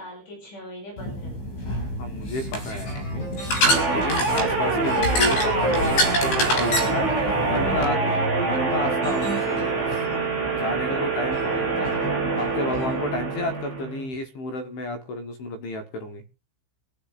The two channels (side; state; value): right; late; 15 ms